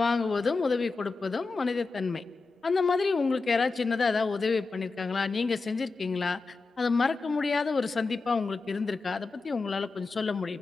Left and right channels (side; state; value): right; quieter; 4.0 dB